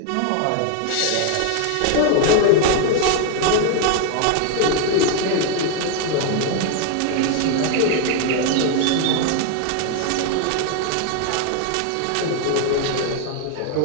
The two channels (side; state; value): both; different; correlation 0.00